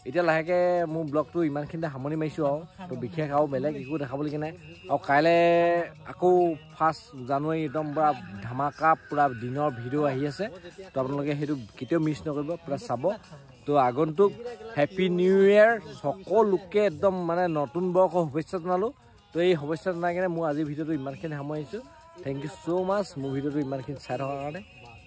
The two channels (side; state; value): both; identical; correlation 1.00